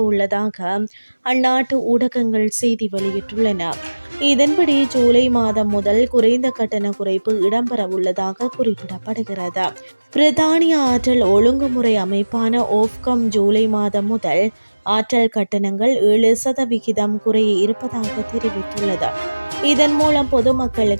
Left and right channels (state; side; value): inverted; both; correlation -1.00